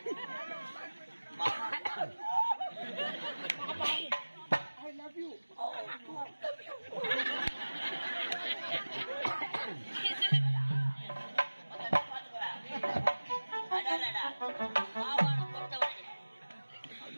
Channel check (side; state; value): both; inverted; correlation -1.00